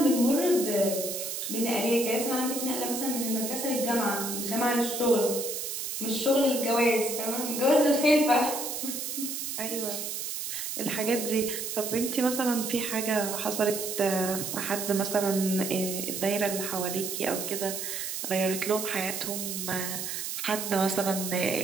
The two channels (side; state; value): right; noise; hiss, 4 dB below the sound